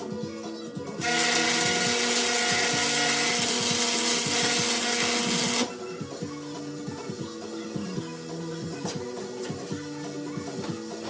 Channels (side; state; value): both; identical; correlation 1.00